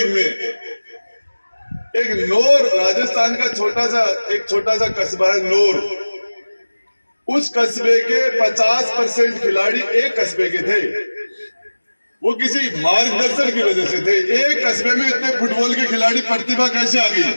में एक नौर, राजस्थान का छोटा सा कस्बा है नौर, उस कस्बे के 50% खिलाड़ी एक कस्बे के थे। वो किसी मार्गदर्शन की वजह से थे। एक कस्बे में इतने फुटबॉल के खिलाड़ी, प्रतिभा कैसे आ गई?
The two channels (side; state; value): both; inverted; correlation -1.00